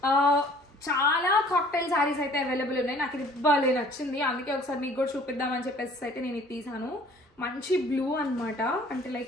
చాలా కాక్టైల్ శారీస్ అయితే అవైలబుల్ ఉన్నాయి. నాకు ఇది భలే నచ్చింది, అందుకే ఒకసారి మీకు కూడా చూపిద్దామని చెప్పేసి అయితే నేను ఇది తీసాను. మంచి బ్లూ అనమాట. అంటే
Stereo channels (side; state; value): both; normal; correlation 0.53